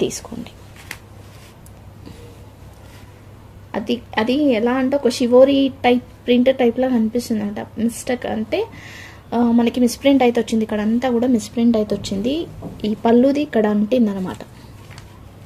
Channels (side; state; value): both; identical; correlation 1.00